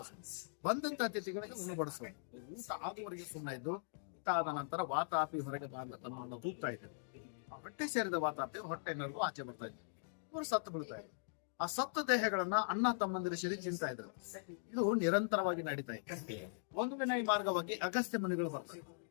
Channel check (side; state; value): right; silent; digital silence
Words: ಬಂದಂತ ಅತಿಥಿಗಳಿಗೆ ಉಣಬಡಿಸೋದು. ಊಟ ಆಗುವವರೆಗೆ ಸುಮ್ಮನೆ ಇದ್ದು ಊಟ ಆದ ನಂತರ ವಾತಾಪಿ ಹೊರಗೆ ಬಾಂಧ ತನ್ನನ್ನು ತೂಗ್ತಾ ಇದ್ರು. ಆ ಹೊಟ್ಟೆ ಸೇರಿದ ವಾತಾಪಿ ಹೊಟ್ಟೆನಲ್ಲೂ ಆಚೆ ಬರ್ತಾ ಇದ್ರು. ಇವರು ಸತ್ತು ಬೀಳ್ತಾ ಇದ್ರು. ಆ ಸತ್ತ ದೇಹಗಳನ್ನ ಅಣ್ಣ ತಮ್ಮಂದಿರ ಸೇರಿ ತಿಂತಾ ಇದ್ರು. ಇದು ನಿರಂತರವಾಗಿ ನಡೀತಾ ಇತ್ತು. ಒಂದು ದಿನ ಈ ಮಾರ್ಗವಾಗಿ ಅಗಸ್ತ್ಯ ಮುನಿಗಳು ಬರ್ತಾರೆ,